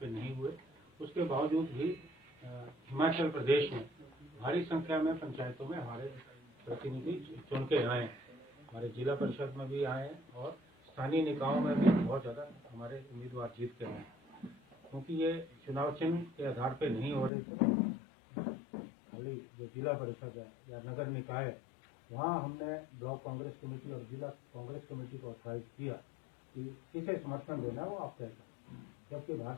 नहीं हुए, उसके बावजूद भी हिमाचल प्रदेश में भारी संख्या में पंचायतों में हमारे प्रतिनिधि चुन के आए हैं, हमारे जिला परिषद में भी आए हैं, और स्थानीय निकायों में भी बहुत ज़्यादा हमारे उम्मीदवार जीत के आए हैं। क्योंकि ये चुनाव चिन्ह के आधार पे नहीं हो रहे थे, खाली जो जिला परिषद है या नगर निकाय है वहाँ हमने ब्लॉक कांग्रेस कमेटी और जिला कांग्रेस कमेटी को ऑथराइज किया कि किसे समर्थन देना है वो आप तय करें, जबकि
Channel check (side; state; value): right; drops out; at 17.3 s